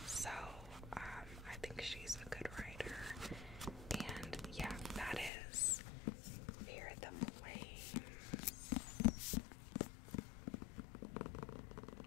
So I think she's a good writer. And yeah, that is Fear the Flames.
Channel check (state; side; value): drops out; right; at 5.3 s